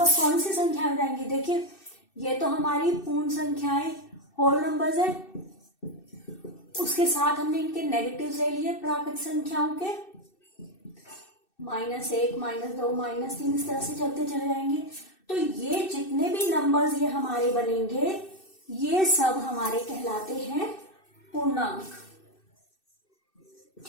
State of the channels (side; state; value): right; late; 2.6 ms